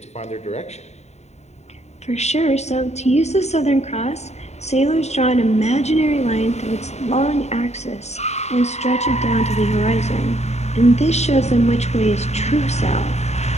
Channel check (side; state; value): right; late; 0.32 ms